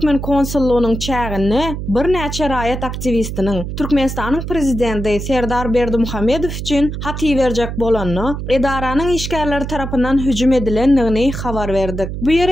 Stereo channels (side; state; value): right; noise; hum, 6 dB below the sound